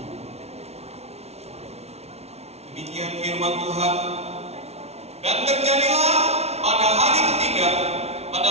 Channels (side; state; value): left; late; 0.31 ms